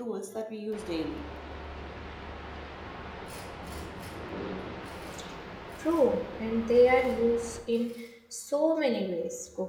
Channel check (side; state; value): both; identical; correlation 1.00